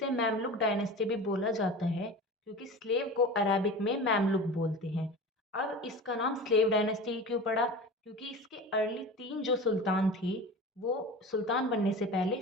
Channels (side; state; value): both; normal; correlation 0.33